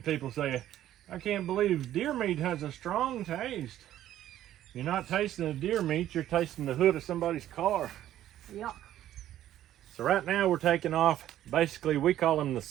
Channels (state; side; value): quieter; left; 12.5 dB